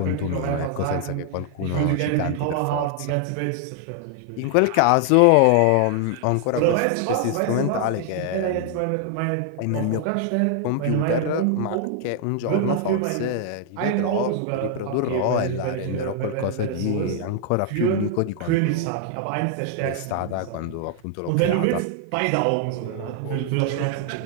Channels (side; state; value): both; different; correlation 0.00